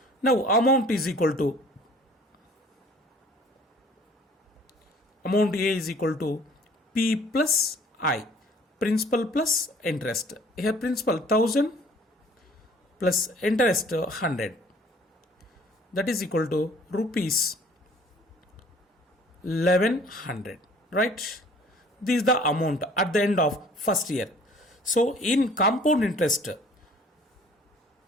Now amount is equal to, amount A is equal to P plus I, principal plus interest. Here principal 1000 plus interest 100. That is equal to rupees 1100, right? This is the amount at the end of first year. So in compound interest,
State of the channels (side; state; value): both; normal; correlation 0.53